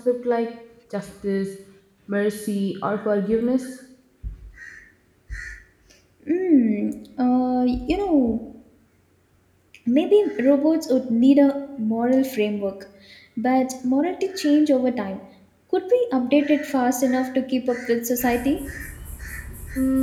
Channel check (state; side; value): identical; both; correlation 1.00